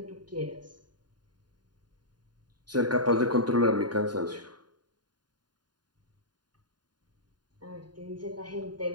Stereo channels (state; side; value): late; left; 0.70 ms